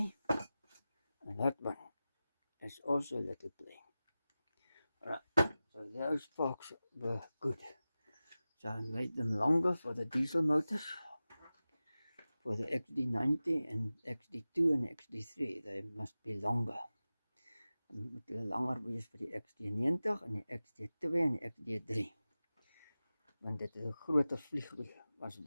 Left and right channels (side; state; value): both; inverted; correlation -0.96